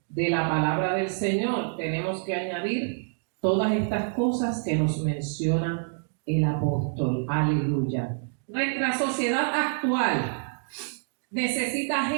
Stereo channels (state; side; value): silent; left; digital silence